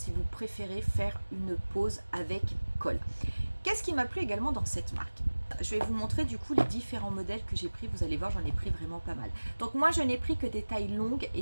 vous préférez faire une pose avec colle. Qu'est-ce qui m'a plu également dans cette marque? Je vais vous montrer du coup les différents modèles que j'ai pris. Vous allez voir, j'en ai pris vraiment pas mal. Donc moi, je n'ai pris que des tailles longues et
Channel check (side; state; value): both; inverted; correlation -1.00